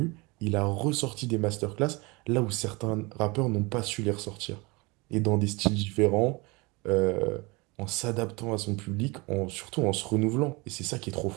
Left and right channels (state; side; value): quieter; left; 25.9 dB